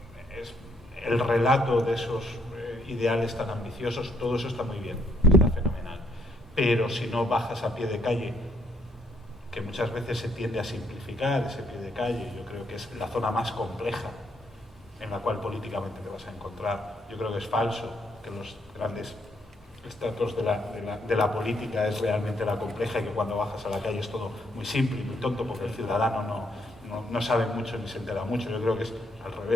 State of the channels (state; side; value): normal; both; correlation 0.71